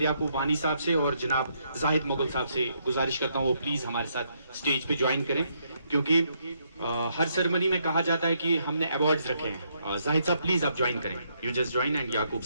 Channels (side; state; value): both; inverted; correlation -0.75